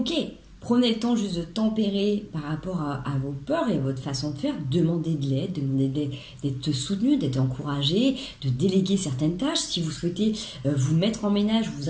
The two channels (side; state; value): both; identical; correlation 1.00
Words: Prenez le temps juste de tempérer par rapport à vos peurs et votre façon de faire. Demandez de l'aide, demandez d'être soutenu, d'être encouragé, de déléguer certaines tâches. Si vous souhaitez vous mettre en ménage, vous